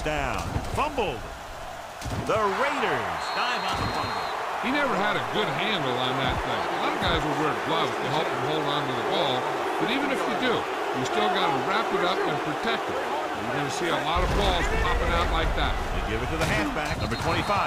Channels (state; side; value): identical; both; correlation 1.00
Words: down. Fumbled. The Raiders dive on the fumble. He never had a good handle on that thing. A lot of guys will wear gloves to help him hold on to the ball, but even if you do, you still got to wrap it up and protect it. You're going to see a lot of balls popping out like that. They give it to the halfback. Number 25